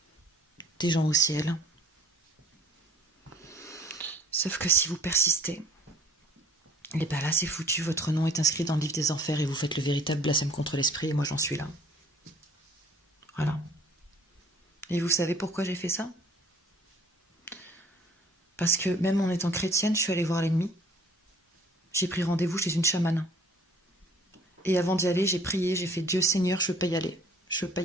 des gens au ciel. Sauf que si vous persistez, et bien là, c'est foutu, votre nom est inscrit dans le livre des enfers et vous faites le véritable blasphème contre l'esprit, et moi j'en suis là. Voilà. Et vous savez pourquoi j'ai fait ça? Parce que même en étant chrétienne, je suis allée voir l'ennemi. J'ai pris rendez-vous chez une chamane. Et avant d'y aller, j'ai prié, j'ai fait Dieu Seigneur, je veux pas y aller. Je veux pas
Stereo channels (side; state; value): both; normal; correlation 0.53